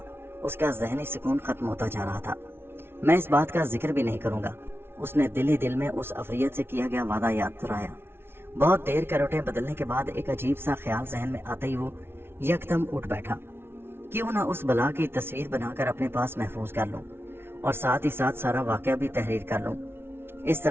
اس کا ذہنی سکون ختم ہوتا جا رہا تھا۔ میں اس بات کا ذکر بھی نہیں کروں گا، اس نے دل ہی دل میں اس افریت سے کیا گیا وعدہ یاد دلایا۔ بہت دیر کروٹیں بدلنے کے بعد ایک عجیب سا خیال ذہن میں آتے ہی وہ یکدم اٹھ بیٹھا۔ کیوں نہ اس بلا کی تصویر بنا کر اپنے پاس محفوظ کر لوں اور ساتھ ہی ساتھ سارا واقعہ بھی تحریر کر لوں۔ اس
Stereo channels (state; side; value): late; left; 0.12 ms